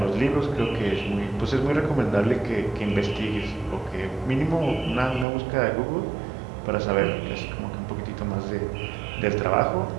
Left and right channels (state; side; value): drops out; left; at 5.2 s